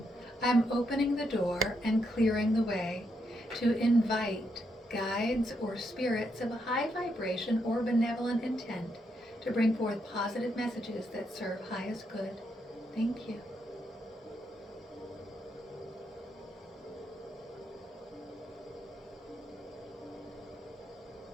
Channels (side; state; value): both; normal; correlation 0.80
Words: I'm opening the door and clearing the way to invite guides or spirits of a high vibration or benevolent intent to bring forth positive messages that serve highest good. Thank you.